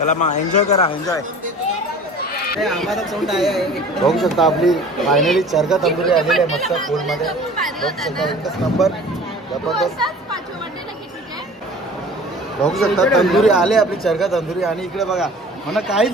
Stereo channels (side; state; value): both; normal; correlation 0.44